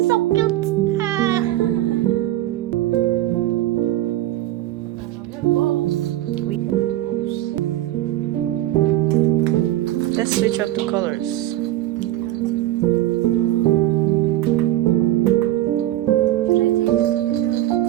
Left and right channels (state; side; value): quieter; left; 14.6 dB